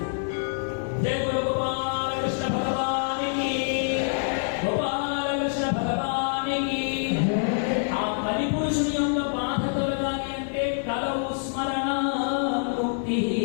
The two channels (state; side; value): silent; right; digital silence